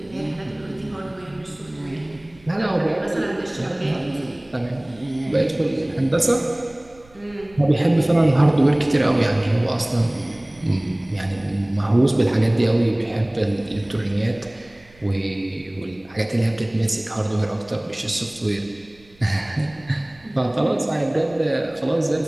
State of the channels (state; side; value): noise; right; rumble, 27 dB below the sound